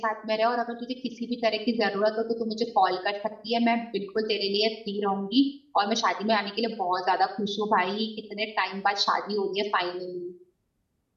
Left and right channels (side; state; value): both; identical; correlation 1.00